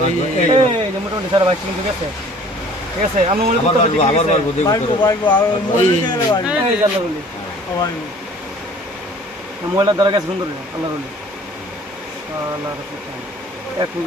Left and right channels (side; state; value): both; normal; correlation 0.51